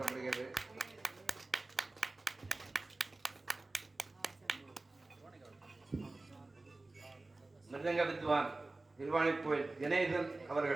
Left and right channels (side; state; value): left; quieter; 3.1 dB